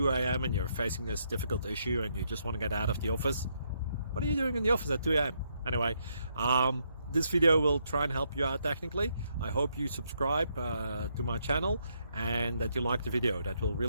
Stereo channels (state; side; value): inverted; both; correlation -0.76